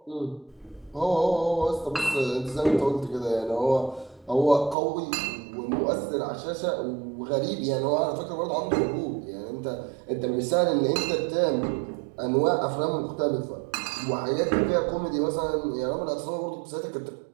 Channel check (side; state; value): left; drops out; at 4.8 s